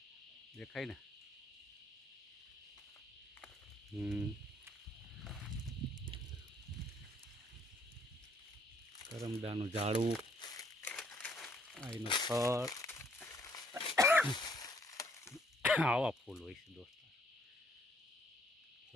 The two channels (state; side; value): normal; both; correlation 0.65